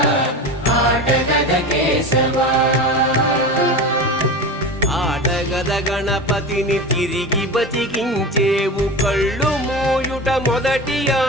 ఆటగద కేశవా ఆటగద గణపతిని తిరిగి బతికించేవు కళ్ళు మోయుట మొదటి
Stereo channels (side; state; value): both; normal; correlation 0.28